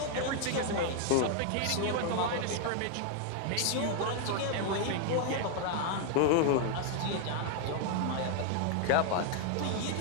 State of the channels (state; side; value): different; both; correlation 0.00